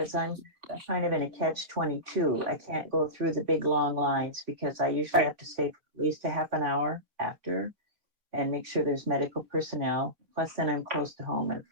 I'm kind of in a catch-22. I can't go through the big long lines, because I usually have to stay for at least a half an hour after and make sure there's medical personnel. Plus, then I'm close to home if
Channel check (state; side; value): late; left; 3.6 ms